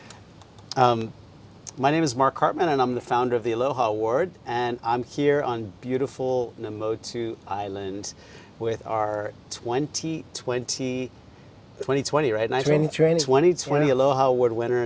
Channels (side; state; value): both; identical; correlation 1.00